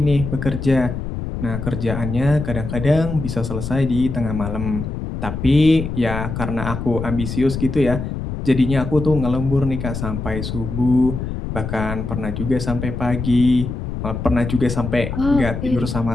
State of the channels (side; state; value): left; noise; rumble, 5 dB below the sound